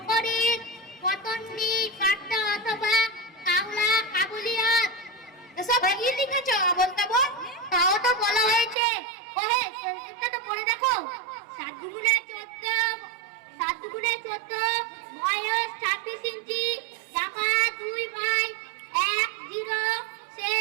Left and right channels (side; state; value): left; drops out; at 8.8 s